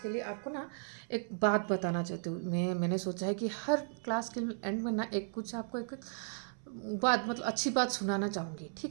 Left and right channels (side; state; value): left; silent; 54 dB below the other